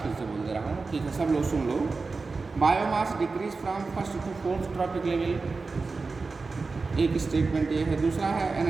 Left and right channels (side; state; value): left; quieter; 4.1 dB